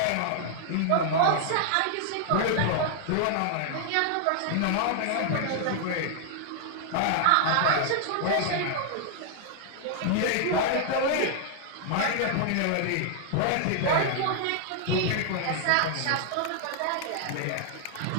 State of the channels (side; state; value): both; different; correlation 0.00